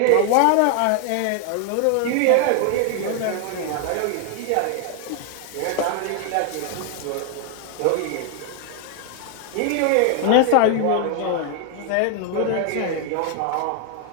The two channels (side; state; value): both; different; correlation 0.00